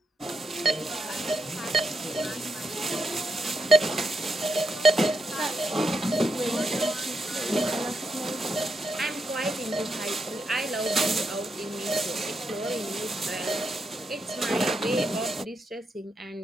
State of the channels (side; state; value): both; normal; correlation 0.82